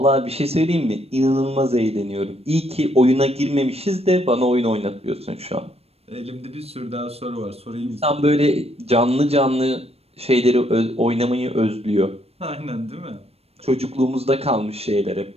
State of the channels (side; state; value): left; late; 0.29 ms